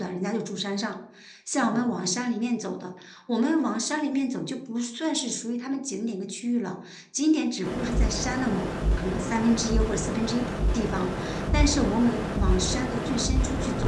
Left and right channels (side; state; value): both; identical; correlation 1.00